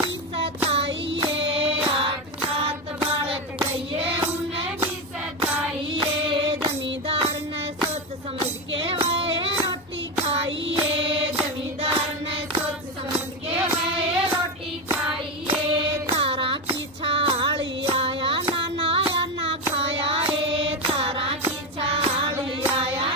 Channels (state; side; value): normal; both; correlation 0.14